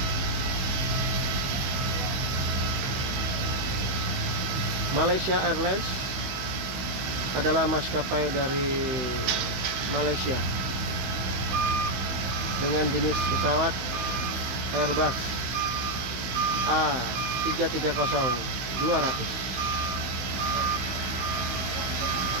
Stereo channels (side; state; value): left; late; 16 ms